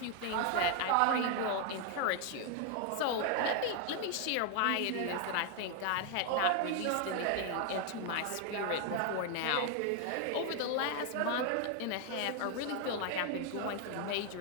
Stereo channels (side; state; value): both; different; correlation 0.00